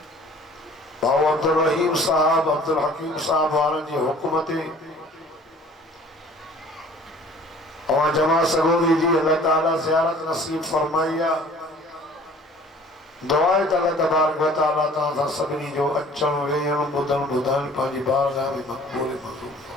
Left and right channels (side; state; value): both; normal; correlation 0.50